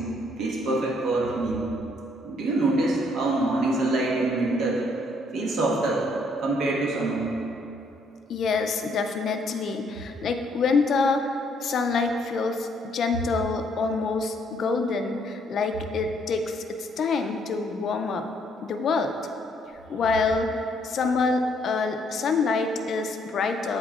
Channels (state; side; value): normal; both; correlation 0.68